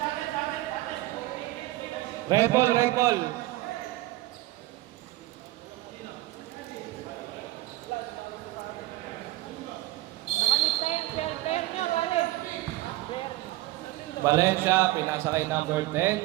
Red ball, red ball. Nakalista yan. Pair nyo, pare. Pair. Valencia, pinasa kay number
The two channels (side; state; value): left; quieter; 17.9 dB